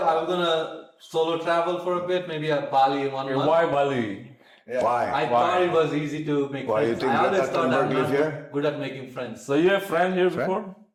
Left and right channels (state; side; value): identical; both; correlation 1.00